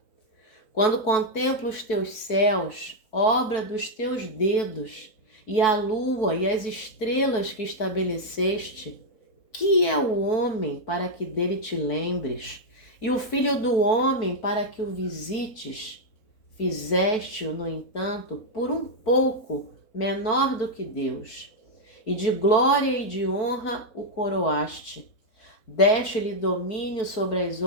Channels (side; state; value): right; late; 4.6 ms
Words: Quando contemplo os teus céus, obra dos teus dedos, e a lua e as estrelas que estabeleceste, que é o homem para que dele te lembres, e o filho do homem para que o visites? Fizeste-o, no entanto, por um pouco menor do que Deus, e de glória e de honra o coroaste. Deste-lhe domínio sobre as